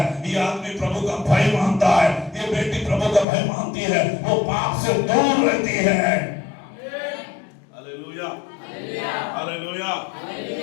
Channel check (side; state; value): right; drops out; at 3.2 s